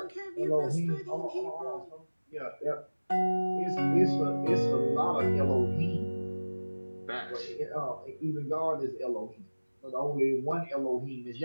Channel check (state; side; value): inverted; both; correlation -1.00